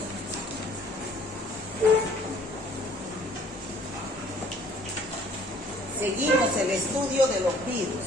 Seguimos el estudio de los virus.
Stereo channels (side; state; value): both; normal; correlation 0.57